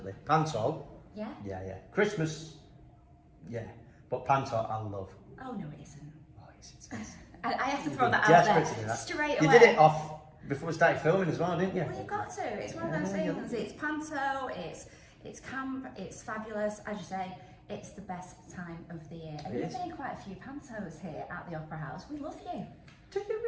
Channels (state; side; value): identical; both; correlation 1.00